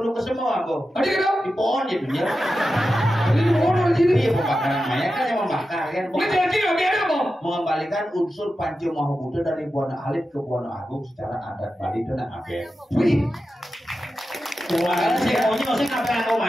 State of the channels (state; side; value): normal; both; correlation 0.91